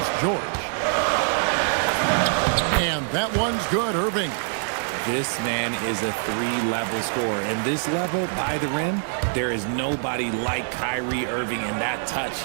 George. And that one's good, Irving. This man is a 3-level scorer. And this level, by the rim, there is nobody like Kyrie Irving and that touch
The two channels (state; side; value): silent; left; 62 dB below the other